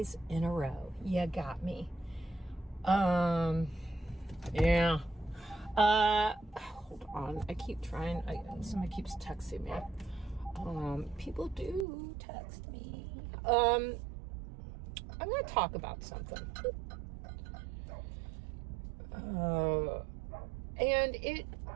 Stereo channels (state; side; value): drops out; left; at 11.9 s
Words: in a row. You got me. Yeah. Hold on. I keep trying. Somebody keeps texting me. People do text me. I'm going to talk about something. And it